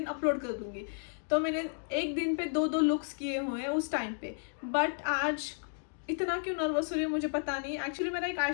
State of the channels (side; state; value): right; silent; digital silence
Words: अपलोड कर दूँगी। तो मैंने एक दिन पे 2-2 लुक्स किए हुए हैं उस टाइम पे। बट आज इतना क्यों नर्वस हो रही हूँ मुझे पता नहीं। एक्चुअली मेरा एक